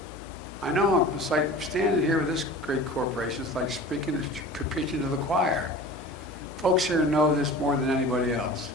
I know it's like standing here with this great corporation, it's like preaching to the choir. Folks here know this more than anybody else.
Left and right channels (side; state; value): both; normal; correlation 0.39